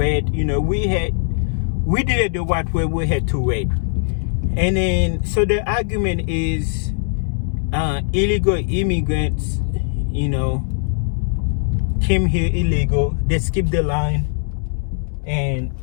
We did it the right way. We had to wait. And then, so the argument is, illegal immigrants, came here illegal. They skipped the line. And,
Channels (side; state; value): right; silent; 65 dB below the other